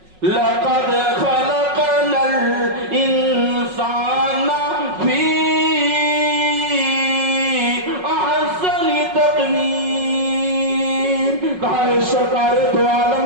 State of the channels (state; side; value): late; left; 5.4 ms